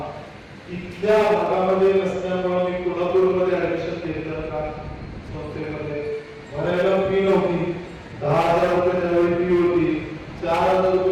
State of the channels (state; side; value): identical; both; correlation 1.00